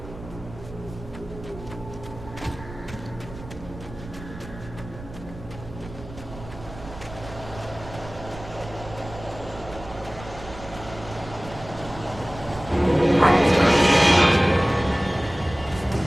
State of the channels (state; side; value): noise; right; rumble, 14 dB below the sound